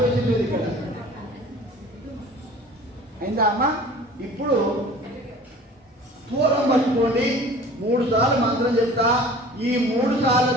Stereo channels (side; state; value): both; normal; correlation 0.45